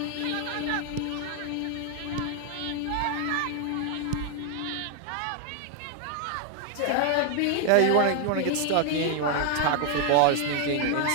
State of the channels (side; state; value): both; different; correlation 0.00